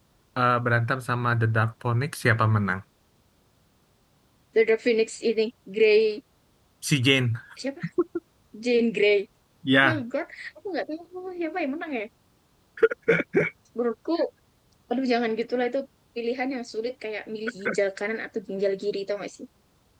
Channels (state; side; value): identical; both; correlation 1.00